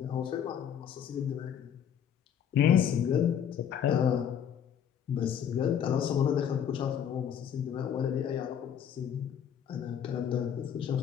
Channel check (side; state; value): right; quieter; 8.7 dB